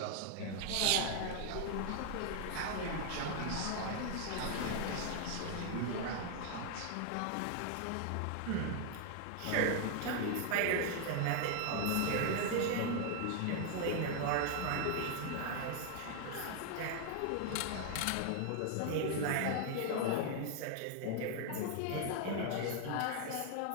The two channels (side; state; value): both; different; correlation 0.00